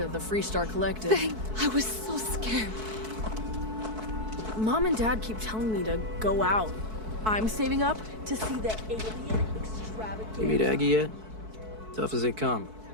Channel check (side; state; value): left; late; 4.6 ms